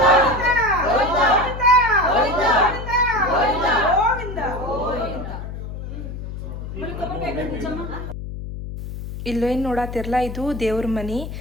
ಇಲ್ಲೇನು ನೋಡತ್ತಿರಲ್ಲ, ಇದು ದೇವ್ರ ಮನಿ.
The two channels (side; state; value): left; noise; hum, 8 dB below the sound